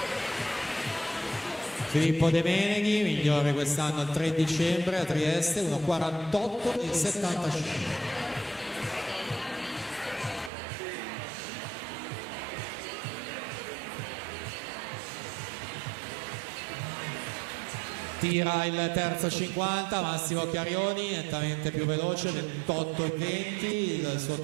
Filippo De Beneghi, migliore quest'anno il 3 dicembre a Trieste, 1:48:75. Tira il terzo 50, Massimo Chiarioni, nettamente più veloce, 28 e 20 il suo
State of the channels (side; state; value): left; drops out; at 10.5 s